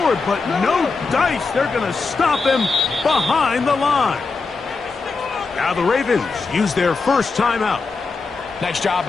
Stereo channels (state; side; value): quieter; right; 4.3 dB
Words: but no dice. They're going to stop him behind the line. Now the Ravens use their first timeout. Nice job